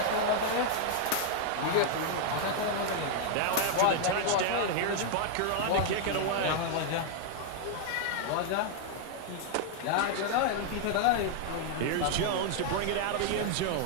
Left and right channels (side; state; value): both; different; correlation 0.00